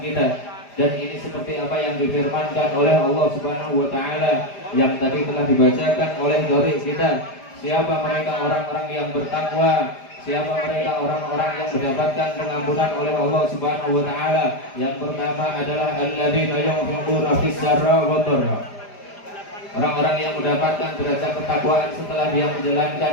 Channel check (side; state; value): right; late; 5.0 ms